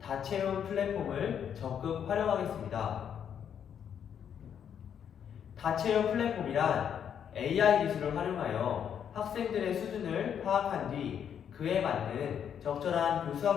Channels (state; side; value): quieter; right; 8.5 dB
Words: 다채움 플랫폼을 적극 활용하겠습니다. 다채움 플랫폼이란 AI 기술을 활용하여 학생들의 수준을 파악한 뒤 그에 맞는 적절한